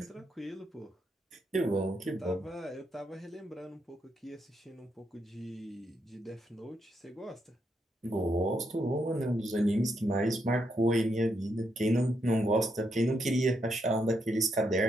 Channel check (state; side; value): normal; both; correlation 0.79